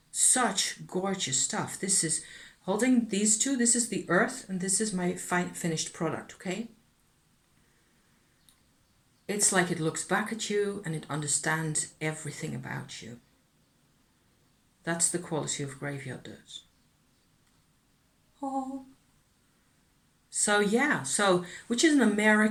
such gorgeous stuff. This is, holding these two, this is the earth, and this is my finished product, okay? It's like it looks back at you and it understands everything about you. That's the quality of graveyard dirt. Oh. So yeah, which is an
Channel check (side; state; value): both; identical; correlation 1.00